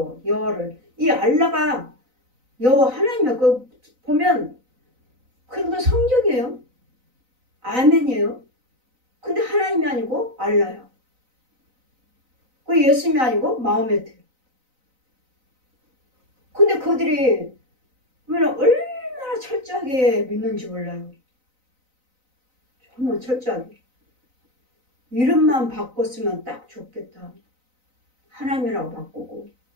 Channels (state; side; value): late; left; 4.0 ms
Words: 이 알라가 여호와 하나님이야. 그 보면 그것도 성경이에요. 아멘이에요. 근데 하나님이 아니고 알라야. 그 예수님이 아니고 마호메트. 근데 그들이 얼마나 철저하게 믿는지 몰라요. 정말 철저하게. 이름만 바꿨으면 딱 좋겠다. 하나님이라고 바꾸고